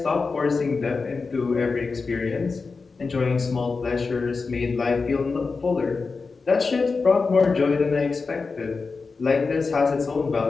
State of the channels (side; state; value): right; quieter; 4.4 dB